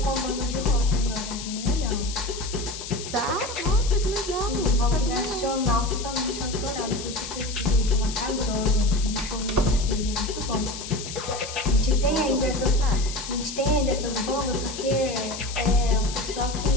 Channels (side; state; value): left; noise; hiss, 9 dB below the sound